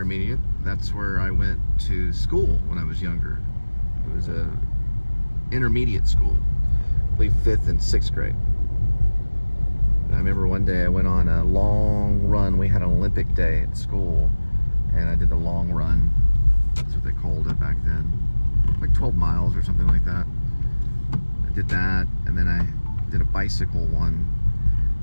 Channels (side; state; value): both; inverted; correlation -1.00